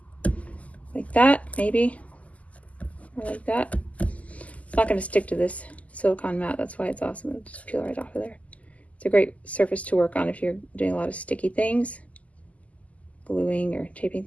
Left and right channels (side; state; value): right; late; 0.071 ms